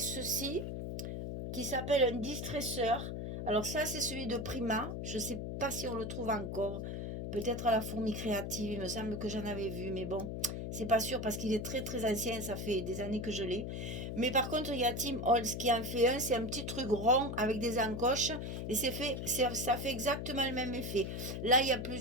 qui s'appelle un distresseur. Alors ça, c'est celui de Prima. Je ne sais pas si on le trouve encore. Peut-être à la Fourmi Créative, il me semble que j'en avais vu, mais bon, c'est pas sûr parce qu'il est très très ancien, ça fait des années que je l'ai. Mais par contre, il y a Tim Holtz qui en fait un, c'est un petit truc rond avec des encoches et ça fait exactement le même effet. Là, il y a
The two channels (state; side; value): noise; left; hum, 4 dB below the sound